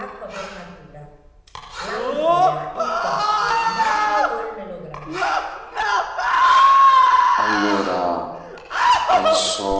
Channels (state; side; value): identical; both; correlation 1.00